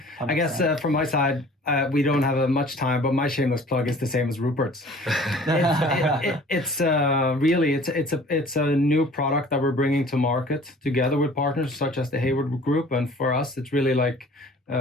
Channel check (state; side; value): normal; both; correlation 0.49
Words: 100%. I guess from my side, we don't have much time, but my shameless plug is the same as Rupert's. It's a new product that we're bringing to market together with partners such as the Heyward Group, and for us, it's really like